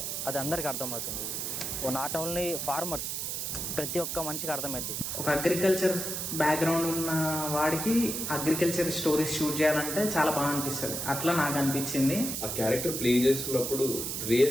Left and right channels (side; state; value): right; noise; hiss, 3 dB below the sound